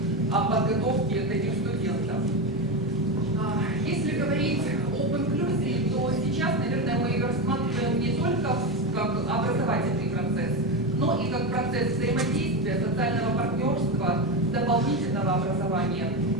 подготовки таких студентов.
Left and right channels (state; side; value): normal; both; correlation 0.16